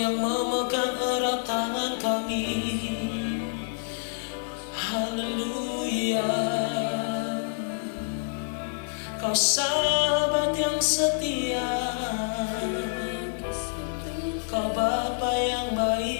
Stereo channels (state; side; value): silent; right; digital silence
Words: memegang erat tangan kami. Haleluya. Kau sahabat yang setia, Kau Bapa yang